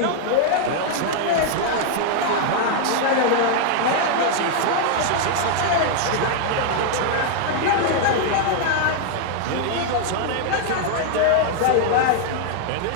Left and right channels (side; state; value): both; different; correlation 0.00